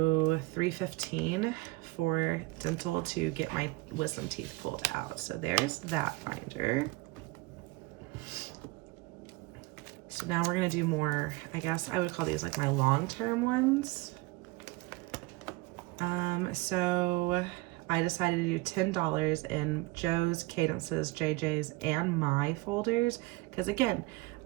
315 for dental to get my wisdom teeth pulled out. So there's that binder. So now we're gonna do more, I guess I would call these like my long-term ones. So I decided to do $10 in Joe's, Cadence's, JJ's, and my folders, because again,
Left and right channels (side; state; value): left; quieter; 21.7 dB